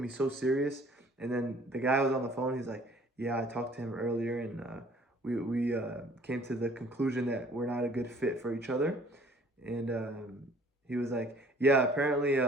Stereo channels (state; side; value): normal; both; correlation 0.55